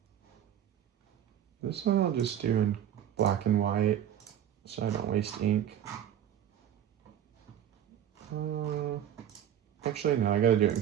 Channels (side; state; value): left; quieter; 10.1 dB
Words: This one I'll just do in black and white so I don't waste ink. Actually, no, I gotta do it in